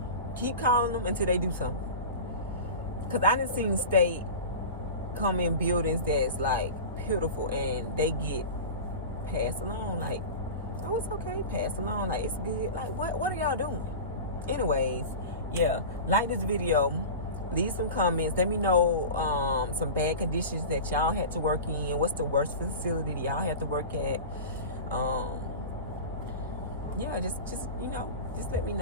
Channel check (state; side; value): inverted; both; correlation -0.31